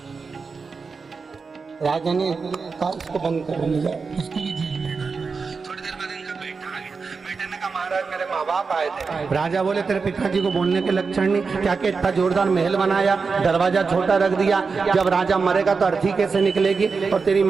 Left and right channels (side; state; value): left; quieter; 4.8 dB